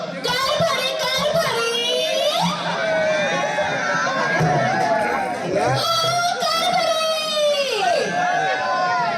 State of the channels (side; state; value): both; identical; correlation 1.00